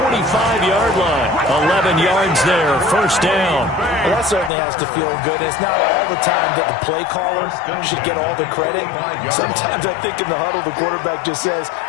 line. 11 yards there, first down. Well, that certainly has to feel good. It's not all the time that the play caller should get all the credit. Sometimes I think in the huddle, the quarterback just says,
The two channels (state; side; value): drops out; right; at 4.5 s